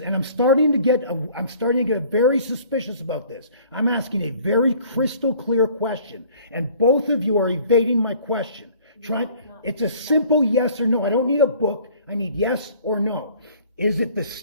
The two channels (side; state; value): both; inverted; correlation -0.53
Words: and I'm starting to get very suspicious about this. I'm asking a very crystal clear question, and both of you are evading my question. It's a simple yes or no. I don't need a book. I need yes or no. Is it the